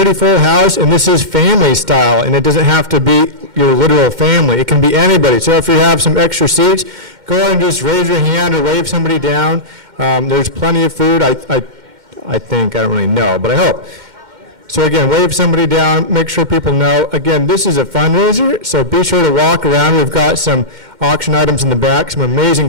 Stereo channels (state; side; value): late; left; 2.1 ms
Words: full house, and this is family style, and it doesn't have to be your literal family. It can be anybody. So if you have some extra seats, go ahead and just raise your hand or wave somebody down. There's plenty of food, I think. I don't really know, but I hope. So again, wave somebody down, make sure people know. Again, this is a fundraiser, so be sure to walk around. We've got some auction items in the back, some amazing